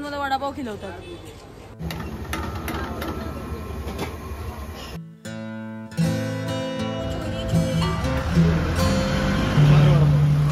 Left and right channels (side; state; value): both; identical; correlation 1.00